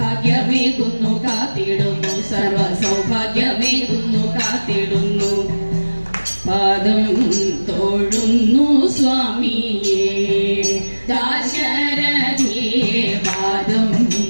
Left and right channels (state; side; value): inverted; both; correlation -1.00